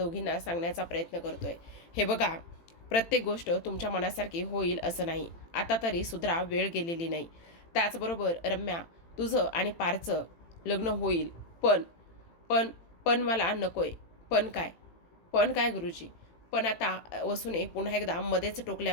सांगण्याचा प्रयत्न करतोय. हे बघा, प्रत्येक गोष्ट तुमच्या मनासारखी होईल असं नाही. आता तरी सुधरा, वेळ गेलेली नाही. त्याचबरोबर रम्या, तुझं आणि पारचं लग्न होईल, पण पण पण मला नकोय. पण काय? पण काय गुरुजी? पण आता वसूने पुन्हा एकदा मध्येच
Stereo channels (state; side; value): late; right; 18 ms